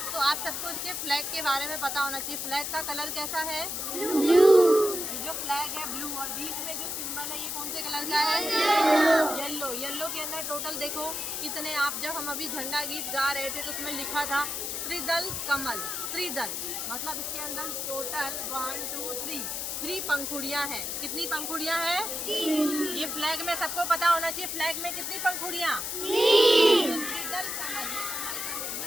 तो आप सबको इसके फ्लैग के बारे में पता होना चाहिए। फ्लैग का कलर कैसा है? ब्लू। ये जो फ्लैग है ब्लू, और बीच में जो सिंबल है ये कौन से कलर का है? येलो। येलो के अंदर टोटल देखो कितने, आप जब हम अभी झंडा गीत गा रहे थे तो उसमें लिखा था त्रिदल कमल। त्रिदल मतलब इसके अंदर टोटल 1 2 3 पंखुड़ियाँ हैं। कितनी पंखुड़ियाँ हैं? 3। ये फ्लैग में सबको पता होना चाहिए, फ्लैग में कितनी पंखुड़ियाँ? 3। त्रिदल कमल,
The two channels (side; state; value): left; noise; hiss, 3 dB below the sound